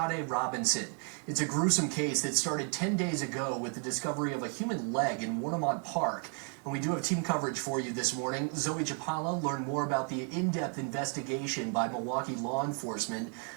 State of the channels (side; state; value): left; quieter; 37.3 dB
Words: Robinson. It's a gruesome case that started 10 days ago with the discovery of a human leg in Warnemont Park. And we do have team coverage for you this morning. Zoe Chapala learned more about the in-depth investigation by Milwaukee law enforcement.